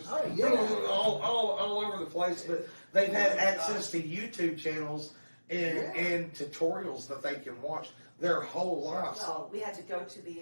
all over the place, but they've had access to YouTube channels and tutorials that they can watch their whole lives. Well, we had to go to the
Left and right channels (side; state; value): both; inverted; correlation -1.00